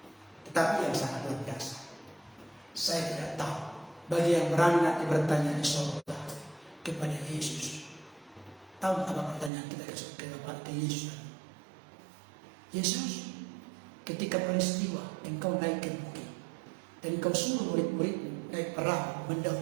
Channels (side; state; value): left; drops out; at 9.5 s